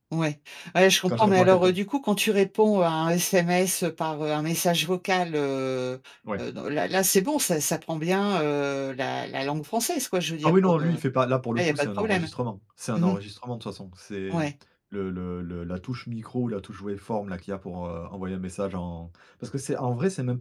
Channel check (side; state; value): both; identical; correlation 1.00